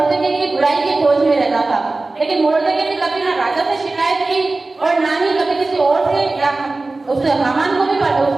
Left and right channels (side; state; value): left; quieter; 3.3 dB